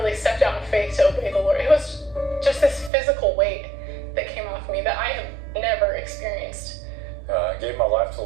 stepped out in faith to obey the Lord, it was just this physical weight that came off me that I have never experienced. I gave my life to the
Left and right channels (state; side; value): drops out; left; at 2.9 s